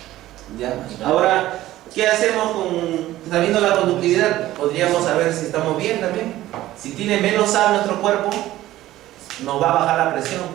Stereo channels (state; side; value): quieter; left; 15.1 dB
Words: ¿Ya? Ahora, ¿qué hacemos sabiendo la conductividad? Podríamos saber si estamos bien también. Si tiene menos sal nuestro cuerpo, nos va a bajar la presión.